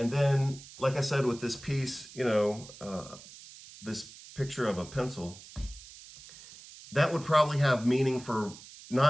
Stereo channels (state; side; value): noise; right; hiss, 18 dB below the sound